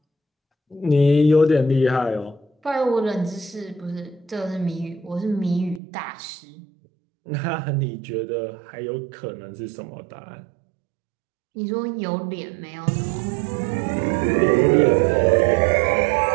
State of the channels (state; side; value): drops out; left; at 5.8 s